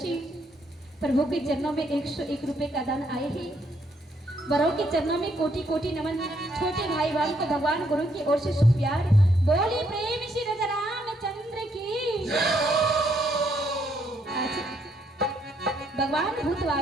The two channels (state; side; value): normal; both; correlation 0.72